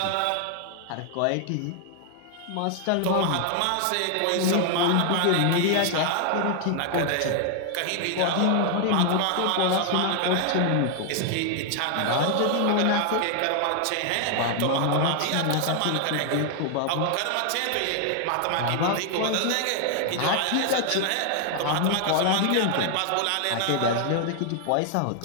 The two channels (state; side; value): different; both; correlation 0.00